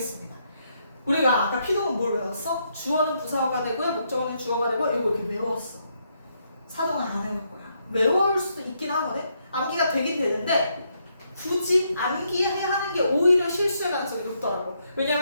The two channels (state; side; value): inverted; both; correlation -0.76